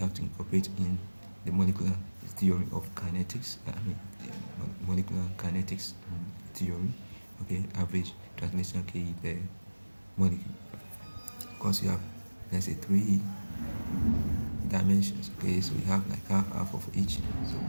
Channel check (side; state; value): both; inverted; correlation -1.00